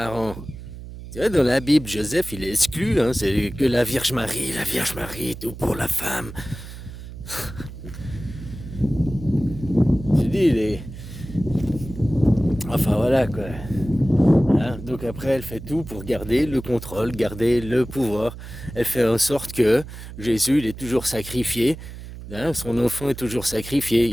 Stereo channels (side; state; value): right; noise; hum, 12 dB below the sound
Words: Tu vois, dans la Bible, Joseph, il est exclu, hein, c'est que la Vierge Marie, tout pour la femme. Je dis, enfin voilà quoi. Hein, donc après, elle fait tout pour garder le contrôle, garder le pouvoir. Elle fait en sorte que Jésus, il est toujours sacrifié. Hein, son enfant est toujours sacrifié.